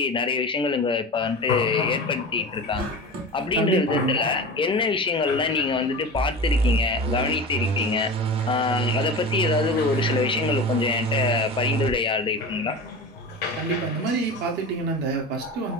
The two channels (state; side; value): normal; both; correlation 0.30